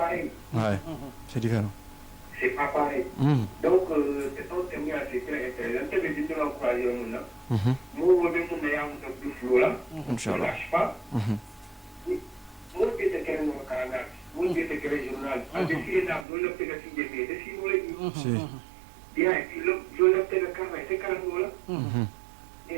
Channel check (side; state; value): left; drops out; at 16.2 s